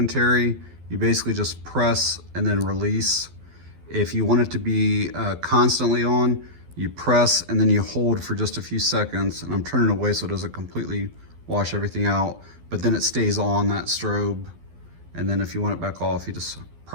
you basically just press and then release. If you want it to be constantly on, you press and then you hold for just a few seconds. And I'm turning away so it doesn't completely wash everything out, but then it stays on, that strobe. And then if you want it back off, you just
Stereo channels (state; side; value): late; left; 12 ms